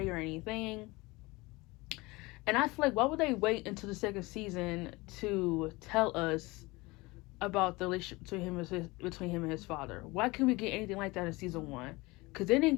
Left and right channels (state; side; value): quieter; right; 22.9 dB